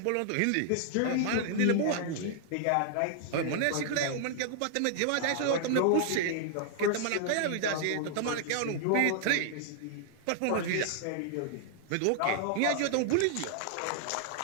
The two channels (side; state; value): both; different; correlation -0.01